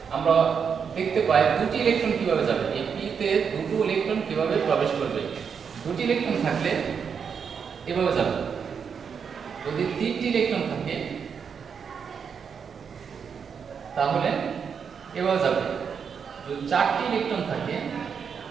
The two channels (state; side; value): quieter; left; 6.7 dB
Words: আমরা দেখতে পাই দুটি ইলেকট্রন কিভাবে যাবে, এই p তে দুটো ইলেকট্রন কিভাবে প্রবেশ করবে। দুটি ইলেকট্রন থাকলে এভাবে যাবে, যদি 3টি ইলেকট্রন থাকে তাহলে এভাবে যাবে, যদি 4টি ইলেকট্রন থাকে